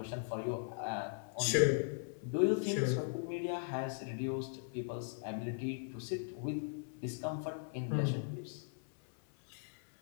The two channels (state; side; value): silent; right; 52 dB below the other